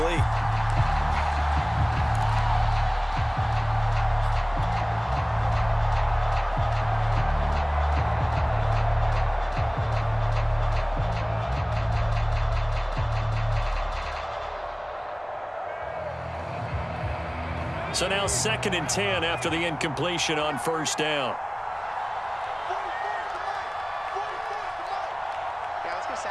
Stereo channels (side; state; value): both; identical; correlation 1.00